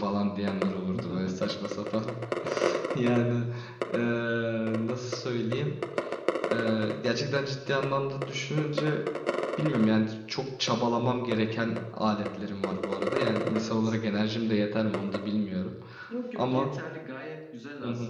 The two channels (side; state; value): both; identical; correlation 1.00